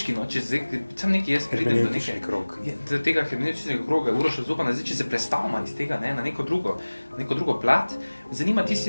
no, če zdaj, sam nekaj jaz pridem do Hermeneutični neke, krog. do tega hermeneutičnega kroga, Uroša Zupana, zdaj, če se prestavimo iz tega, ne, na neko drugo plat, me zanima, ti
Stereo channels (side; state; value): both; inverted; correlation -1.00